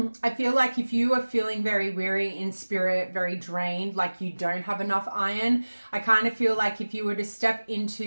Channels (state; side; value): inverted; both; correlation -1.00